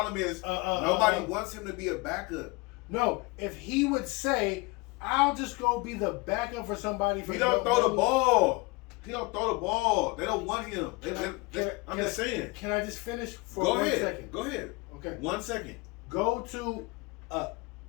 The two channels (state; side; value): quieter; right; 25.2 dB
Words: is nobody wants him to be a backup. No, if he would say, "I'll just go be the backup for somebody," He don't throw the ball. He don't throw the ball. They don't want him. I'm just saying. Can I just finish for Go 1 ahead. second? Go ahead. Okay. 1 second. Go to